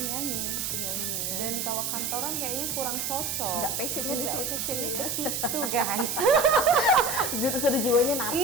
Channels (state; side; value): noise; right; hiss, 2 dB below the sound